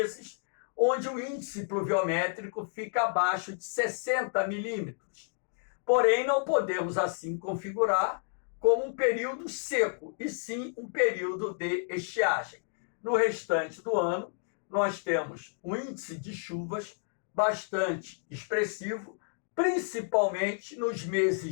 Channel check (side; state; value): right; silent; 57 dB below the other